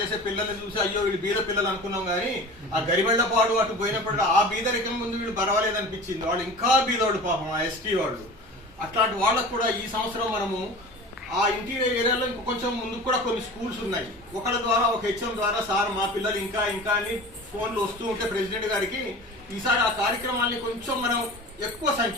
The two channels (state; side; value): normal; both; correlation 0.37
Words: పిల్లల్ని చూసి అయ్యో వీళ్ళు బీద పిల్లలు అనుకున్నాం, కానీ ఆ గరిబెళ్లపాడు అటు పోయినప్పుడు ఆ బీదరికం ముందు వీళ్ళు పర్వాలేదు అనిపించింది. వాళ్ళు ఇంకా బీదోడు పాపం ఆ ఎస్టీ వాళ్ళు. అట్లాంటి వాళ్ళకు కూడా ఈ సంవత్సరం మనము ఆ ఇంటీరియర్ ఏరియాలో ఇంకో కొంచెం ముందు కూడా కొన్ని స్కూల్స్ ఉన్నాయి. ఒకళ్ళ ద్వారా ఒక హెచ్ఎం ద్వారా సార్ మా పిల్లలు ఇంకా ఇంకా అని ఫోన్లు వస్తూ ఉంటే ప్రెసిడెంట్ గారికి ఈసారి ఆ కార్యక్రమాన్ని కొంచెం మనం ఎక్కువ